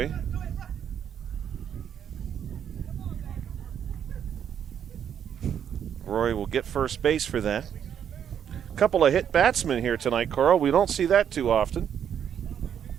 Rory will get first base for that. A couple of hit batsmen here tonight, Carl. We don't see that too often.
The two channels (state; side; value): quieter; left; 8.8 dB